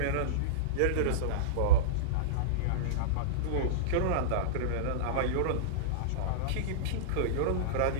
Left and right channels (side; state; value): both; different; correlation -0.03